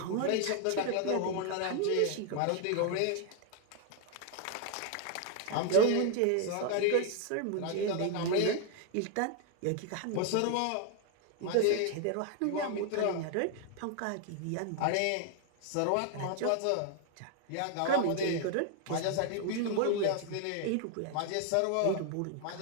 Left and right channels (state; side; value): different; both; correlation 0.00